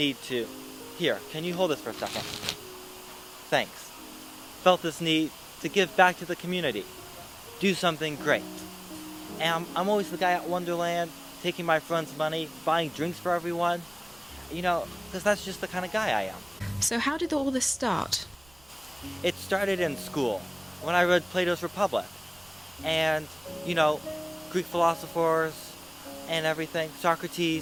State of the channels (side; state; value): right; noise; rumble, 28 dB below the sound